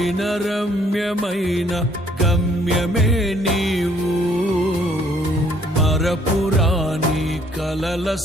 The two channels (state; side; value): normal; both; correlation 0.64